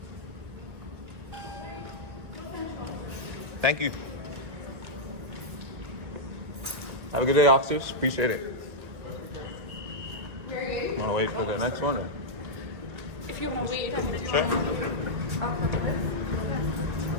Thank you. Have a good day, officers. Appreciate it. Want to wait for the next one? Or? If you want to wait, I'm going to Sure.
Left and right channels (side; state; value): left; late; 1.9 ms